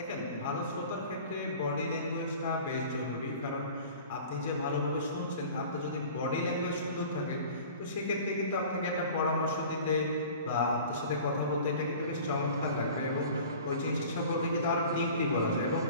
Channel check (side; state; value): both; inverted; correlation -0.43